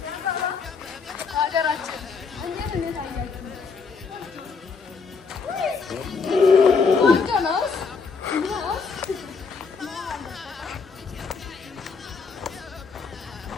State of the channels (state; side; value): quieter; right; 5.0 dB